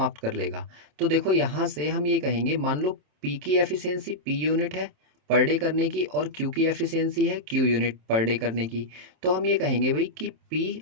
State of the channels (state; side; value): late; left; 27 ms